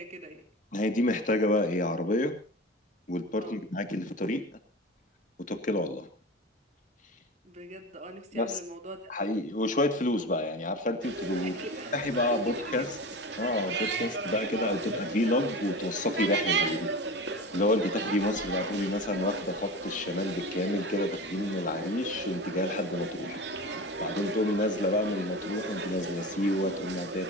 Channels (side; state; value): both; normal; correlation 0.31